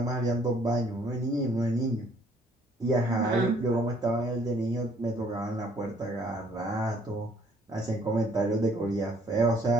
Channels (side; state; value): both; normal; correlation 0.62